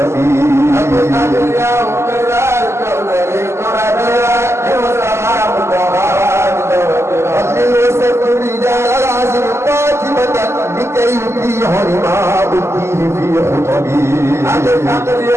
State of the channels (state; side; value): late; left; 0.13 ms